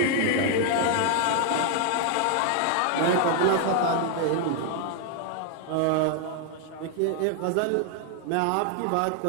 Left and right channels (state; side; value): different; both; correlation 0.00